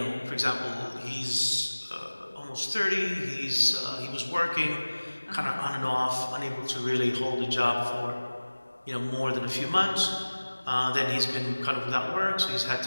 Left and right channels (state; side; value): inverted; both; correlation -1.00